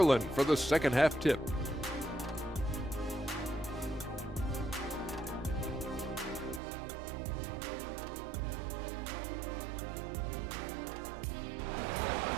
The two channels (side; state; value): left; drops out; at 6.6 s